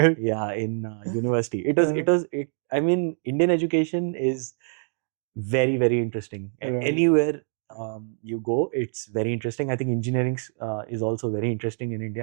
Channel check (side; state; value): left; silent; 61 dB below the other